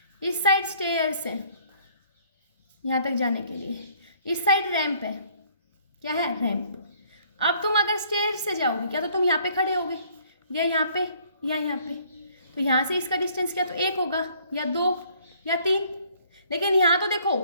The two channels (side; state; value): both; inverted; correlation -0.61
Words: इस साइड स्टेयर्स है यहाँ तक जाने के लिए, इस साइड रैंप है। क्या है? रैंप। अब तुम अगर स्टेयर से जाओगे क्या तो तुम यहाँ पे खड़े होगे, या यहाँ पे या यहाँ पे, तो यहाँ से इसका डिस्टेंस क्या तो 1 होगा या 2 या 3। लेकिन यहाँ तो देखो